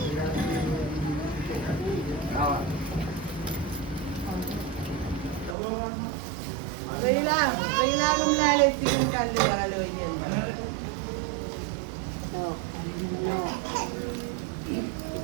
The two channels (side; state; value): left; drops out; at 5.6 s